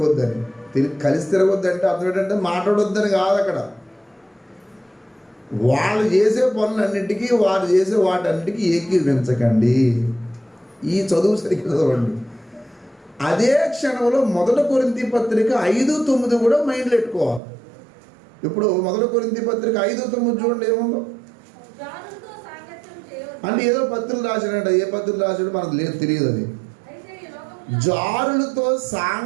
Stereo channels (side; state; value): left; drops out; at 17.4 s